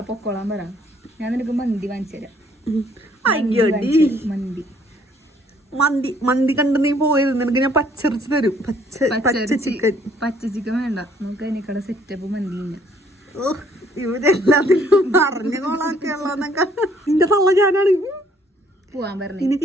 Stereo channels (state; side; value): normal; both; correlation 0.63